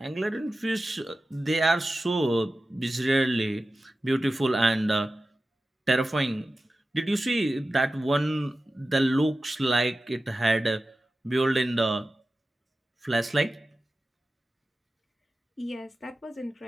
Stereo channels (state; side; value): normal; both; correlation 0.94